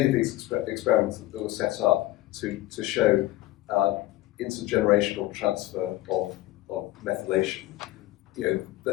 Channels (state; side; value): quieter; right; 16.7 dB